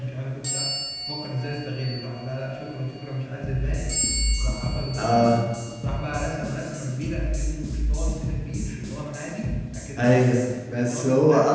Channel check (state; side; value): identical; both; correlation 1.00